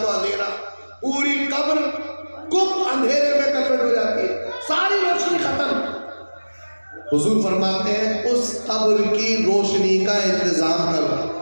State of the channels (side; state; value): both; inverted; correlation -1.00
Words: تو اندھیرا, پوری قبر گم اندھیرے میں کنورٹ ہو جاتی ہے, ساری روشنی ختم. حضور فرماتے ہیں اس قبر کی روشنی کا انتظام کرو.